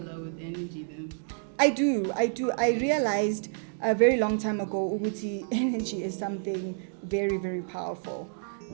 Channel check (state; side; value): silent; left; digital silence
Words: with energy then. I do. I realized a very long time ago, Uguti, energy is something very, very powerful.